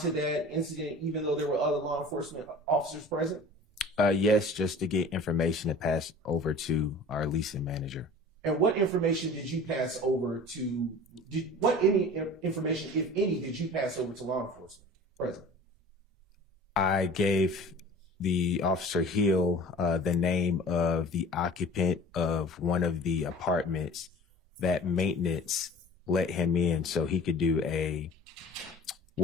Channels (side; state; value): both; normal; correlation 0.43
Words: to that incident, even though there were other law enforcement officers present? Yes, just to get information to pass over to our leasing manager. And what information did you pass over to? Any information, if any, did you pass over to law enforcement present? I gave the officer Hill the name of the occupant of one of the apartments that maintenance let him in so he could do a